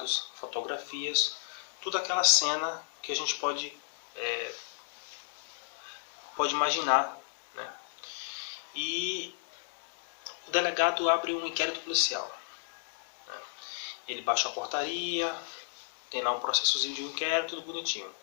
fotografias, toda aquela cena que a gente pode imaginar, né? E o delegado abre um inquérito policial, né? Ele baixa a portaria, tem lá um processozinho de inquérito, tudo bonitinho.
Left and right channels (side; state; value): right; silent; digital silence